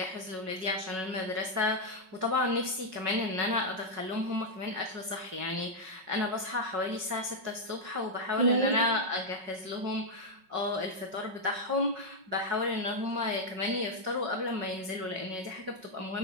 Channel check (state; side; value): late; left; 5.4 ms